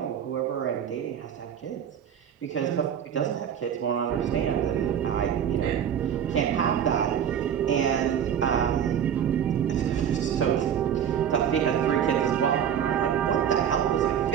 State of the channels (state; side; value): quieter; left; 8.9 dB